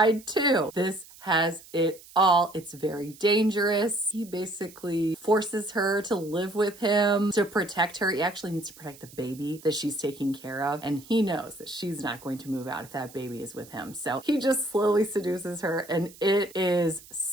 too. This has it all. It's very dangerous. He basically forces her to live with him to protect her. He actually needs to protect the baby that she's taking care of. And he knows that she's not going to move out if that baby is with him. So he just slowly seduces her, and it is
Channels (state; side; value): noise; right; hiss, 21 dB below the sound